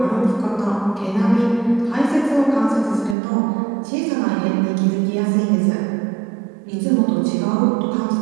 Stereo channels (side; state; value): left; drops out; at 3.2 s